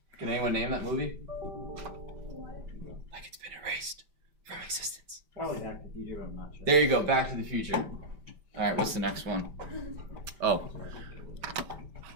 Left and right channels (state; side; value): late; left; 5.1 ms